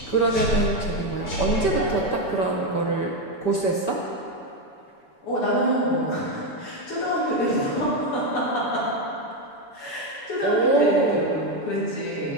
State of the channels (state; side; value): late; right; 7.0 ms